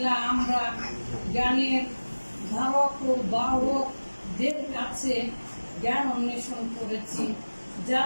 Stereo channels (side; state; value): both; inverted; correlation -1.00